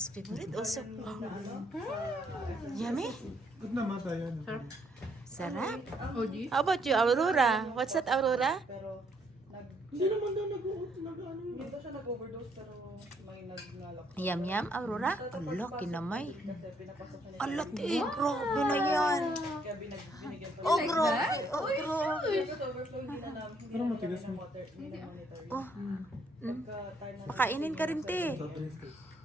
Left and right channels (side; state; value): both; normal; correlation 0.70